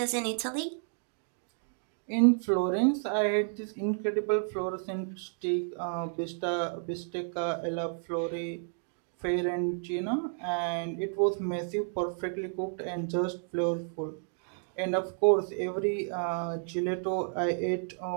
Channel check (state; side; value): silent; left; 57 dB below the other